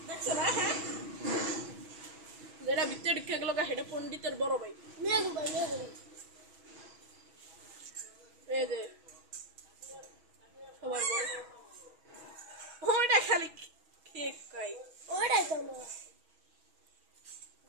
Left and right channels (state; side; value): late; left; 6.2 ms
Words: দেখছ না হ্যাঁ যেটা ভিতরে ঢুকে গেল সেটা পণ্ডিতের বড় ভাই নিয়ে দেবো এই যে সবার বড় ওইটা খালি কেক খাই ওটাই তো না